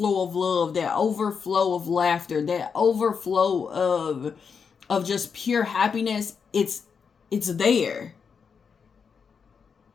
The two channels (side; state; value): right; quieter; 6.1 dB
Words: of love, that overflow of laughter, that overflow of just pure happiness, it's there.